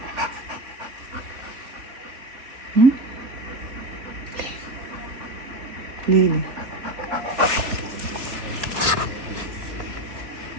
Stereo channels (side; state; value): left; late; 3.7 ms